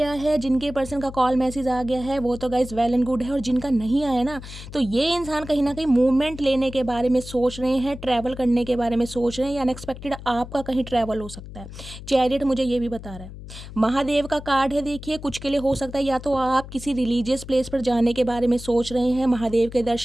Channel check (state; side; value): noise; left; hum, 13 dB below the sound